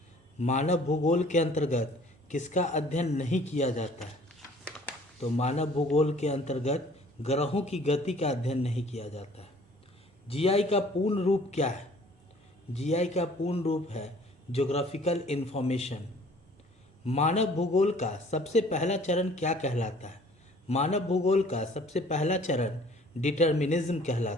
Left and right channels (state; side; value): normal; both; correlation 0.53